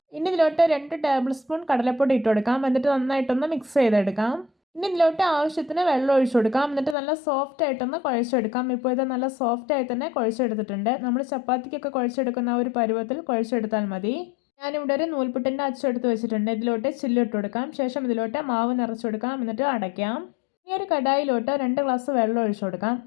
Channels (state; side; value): drops out; right; at 7.0 s